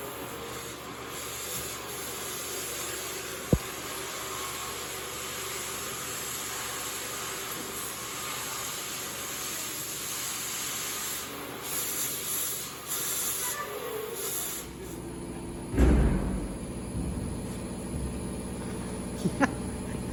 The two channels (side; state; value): both; identical; correlation 1.00